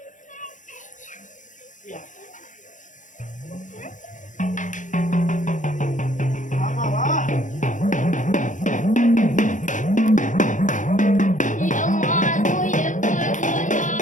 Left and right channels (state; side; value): late; right; 0.37 ms